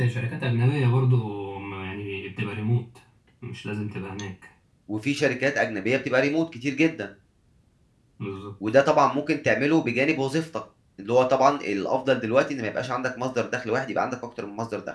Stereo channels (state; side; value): identical; both; correlation 1.00